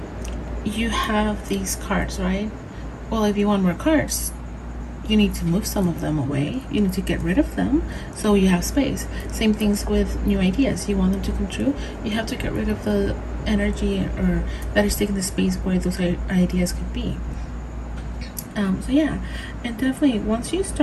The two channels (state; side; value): identical; both; correlation 1.00